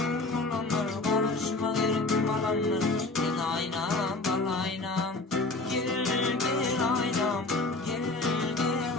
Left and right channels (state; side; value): quieter; right; 3.2 dB